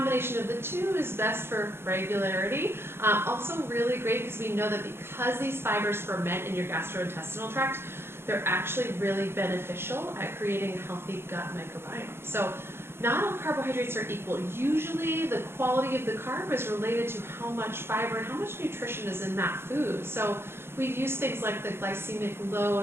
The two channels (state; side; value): late; left; 0.11 ms